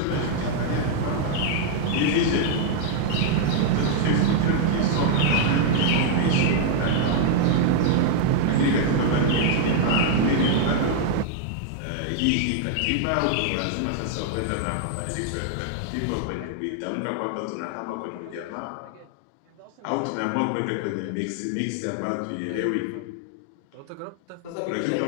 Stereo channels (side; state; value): both; different; correlation 0.00